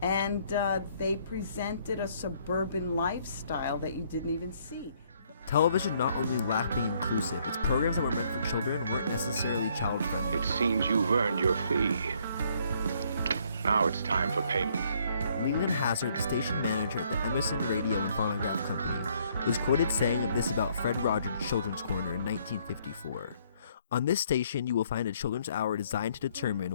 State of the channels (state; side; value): inverted; both; correlation -0.66